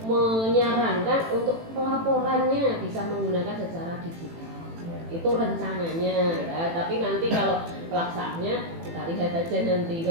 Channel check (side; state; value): left; late; 18 ms